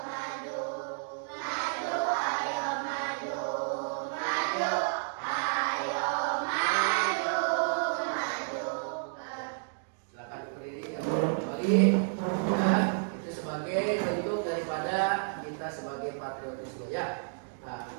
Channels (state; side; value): silent; left; digital silence